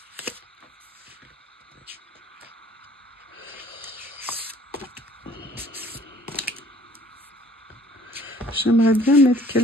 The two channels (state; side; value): normal; both; correlation 0.56